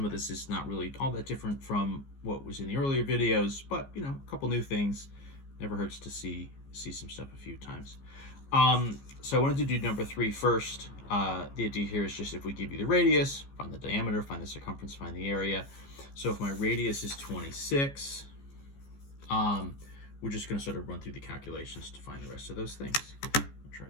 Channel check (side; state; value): right; late; 15 ms